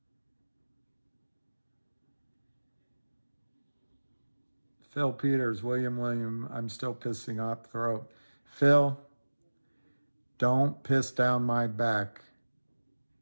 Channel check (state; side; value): inverted; both; correlation -1.00